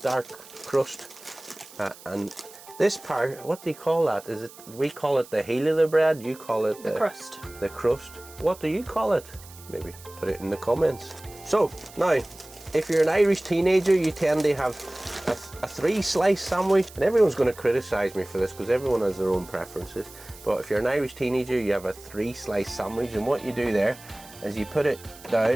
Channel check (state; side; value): noise; right; hiss, 20 dB below the sound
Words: crust. And this part, what do you call that? Is it? We call it the heel of the bread, you call it the crust. The crust. What do you call it? Maybe put it in the comments. So, now, if you're an Irish teenager, you tend to have a 3-slice sandwich, and everyone's going to criticise me for this because everyone has their own preferences. But if you're an Irish teenager, you have a 3-slice sandwich, and what you do there is you put it